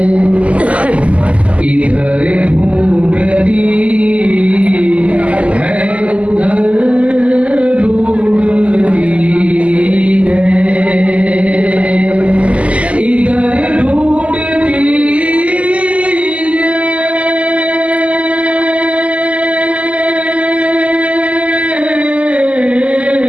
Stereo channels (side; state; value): left; late; 0.064 ms